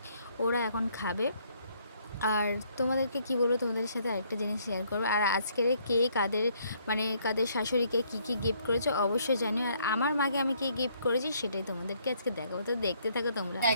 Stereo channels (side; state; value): both; inverted; correlation -0.67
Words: ওরা এখন খাবে। আর তোমাদেরকে কি বলবো, তোমাদের সাথে আরেকটা জিনিস শেয়ার করবো। আর আজকের কে কাদের মানে কাদের শাশুড়িকে কী গিফট করেছো অবশ্যই জানিও, আর আমার মাকে আমি কী গিফট করেছি সেটাই তোমাদেরকে আজকে দেখাবো। তো দেখতে থাকো তোমরা।